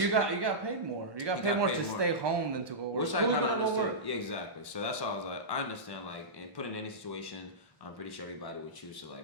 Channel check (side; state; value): both; normal; correlation -0.15